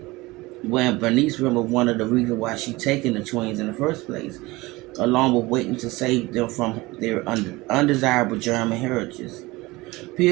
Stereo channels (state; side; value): quieter; left; 21.4 dB